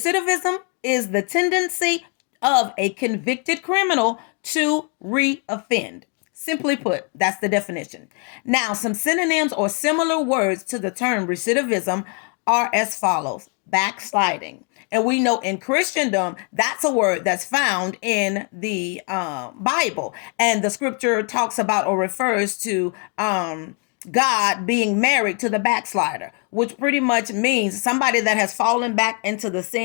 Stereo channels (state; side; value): quieter; right; 37.4 dB